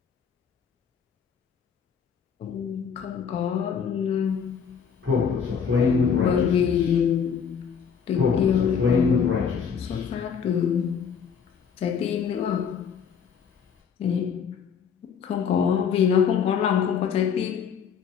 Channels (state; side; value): quieter; right; 7.0 dB